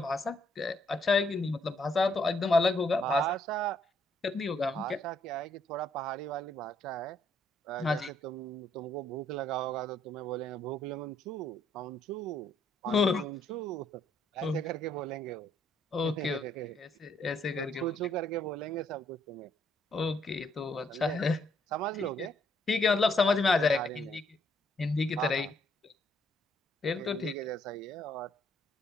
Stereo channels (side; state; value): both; normal; correlation 0.70